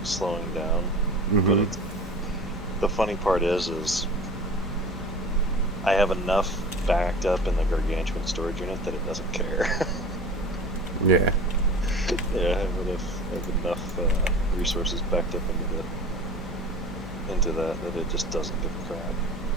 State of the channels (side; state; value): both; normal; correlation 0.38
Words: slowing down, but it's, the funny part is I have enough backed up in the gargantuan storage unit that it doesn't care. Yeah. Yeah, I have enough resources backed up into that it just doesn't give a crap,